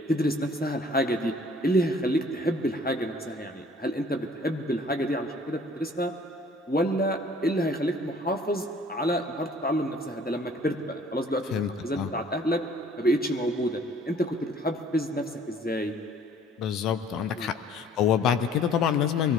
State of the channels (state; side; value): normal; both; correlation 0.54